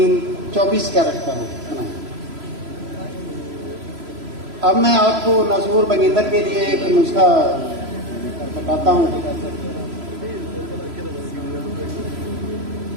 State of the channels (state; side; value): late; left; 3.0 ms